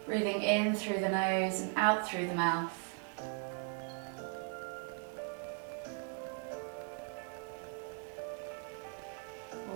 breathing in through the nose and out through the mouth.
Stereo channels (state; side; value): quieter; left; 38.7 dB